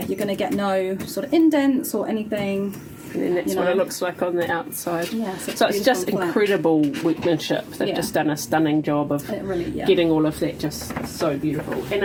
You're going to get no sort of indents or anything. And then that's what it looks like on the outside. Yeah, so it's just incredible workmanship. They've just done a stunning job of getting all of that just so beautiful. And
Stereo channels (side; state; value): both; identical; correlation 1.00